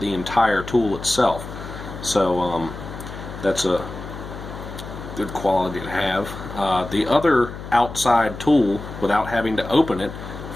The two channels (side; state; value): left; noise; hum, 11 dB below the sound